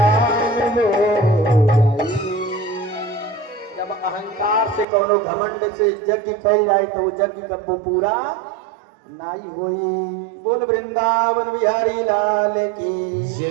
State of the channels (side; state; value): left; drops out; at 4.9 s